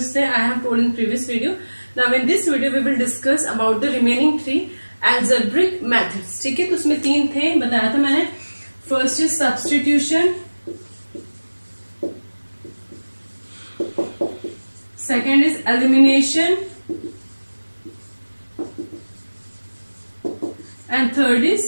थे. I have told in previous video. Now in this video we will discuss about the remaining 3 algebraic methods. ठीक है, तो उसमें 3 थे, बताया था मैंने. First is substitution, second is elimination, and third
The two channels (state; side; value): inverted; both; correlation -1.00